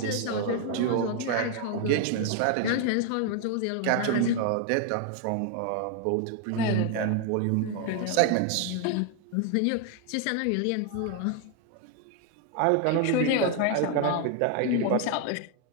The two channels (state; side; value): different; both; correlation 0.01